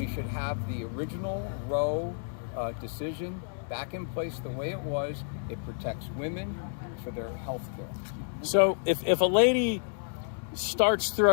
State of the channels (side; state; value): right; silent; digital silence